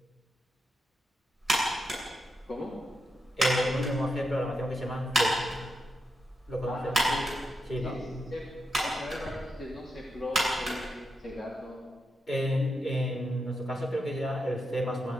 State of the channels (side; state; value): both; normal; correlation 0.85